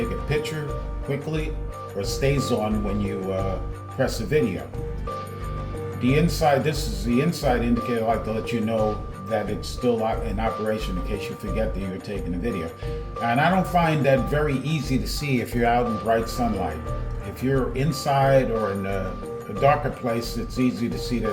a picture quickly, or stays on when you press a video. This is the inside indicator. I like to let you know that it's still in operation in case you forget that you're taking a video. And I don't find that very easy to see if you're out in bright sunlight. If you're inside or in a darker place, it's easy to see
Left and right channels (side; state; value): both; identical; correlation 1.00